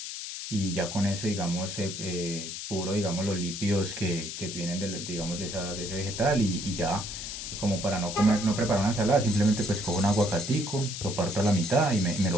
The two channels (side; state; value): left; noise; hiss, 7 dB below the sound